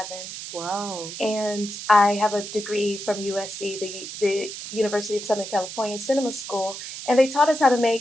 Wow. And I have a degree from USC, the University of Southern California Cinema School, and they taught us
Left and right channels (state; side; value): noise; right; hiss, 9 dB below the sound